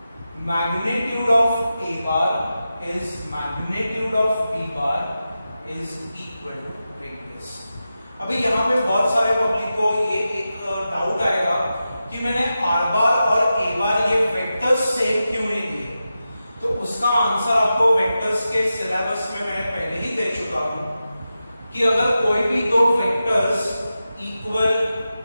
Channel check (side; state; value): both; inverted; correlation -0.92